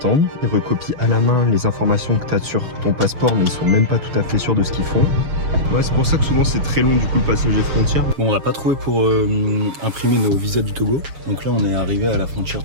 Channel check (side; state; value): left; late; 7.2 ms